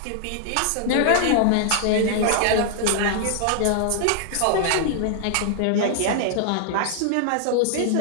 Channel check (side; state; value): both; different; correlation -0.01